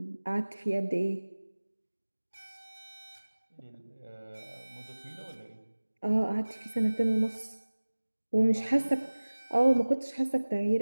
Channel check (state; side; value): inverted; both; correlation -1.00